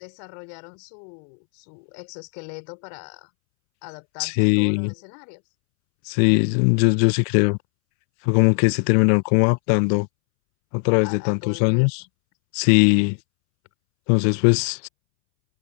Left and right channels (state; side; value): silent; right; 65 dB below the other